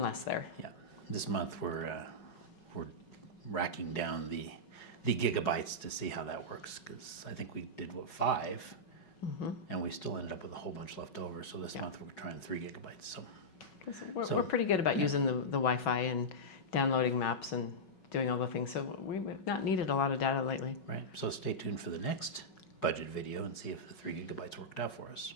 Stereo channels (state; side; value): late; right; 5.4 ms